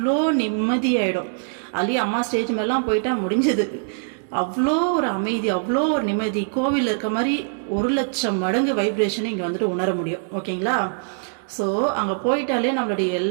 நிம்மதியாயிடும். அதுலயே அம்மா ஸ்டேஜ் மேலாம் போயிட்டா முடிஞ்சது. அவ்வளோ ஒரு அமைதி, அவ்வளோ ஒரு நிம்மதி, கோவிலில் இருக்க மாதிரி 1 லட்சம் மடங்கு வைப்ரேஷனை இங்கே வந்துட்டு உணர முடியும். ஓகேங்களா. ஸோ அங்கே போயிட்டாலே நம்மளுடைய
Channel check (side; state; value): left; silent; 64 dB below the other